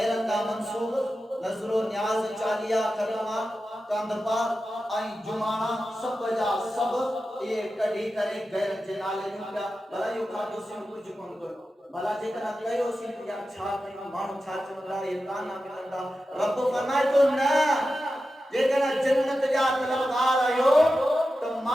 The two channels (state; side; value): normal; both; correlation 0.92